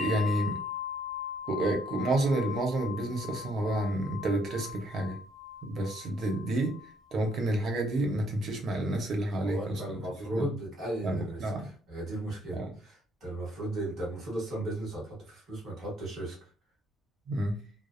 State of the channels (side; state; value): both; normal; correlation 0.68